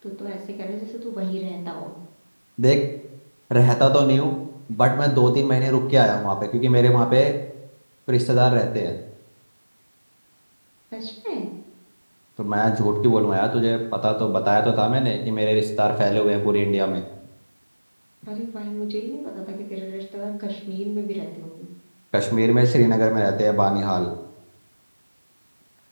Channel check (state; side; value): inverted; both; correlation -1.00